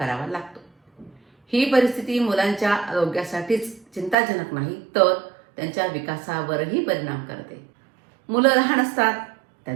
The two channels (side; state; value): left; drops out; at 4.2 s